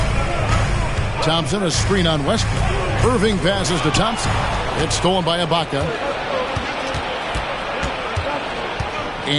Thompson, a screen on Westbrook. Irving passes to Thompson. It's stolen by Ibaka.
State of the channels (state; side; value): identical; both; correlation 1.00